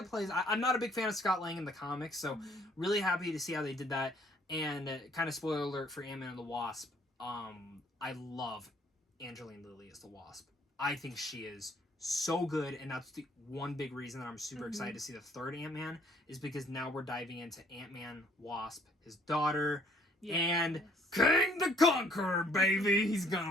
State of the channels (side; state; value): both; normal; correlation 0.62